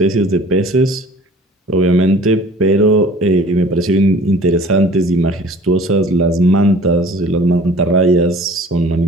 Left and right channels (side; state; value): both; normal; correlation 0.48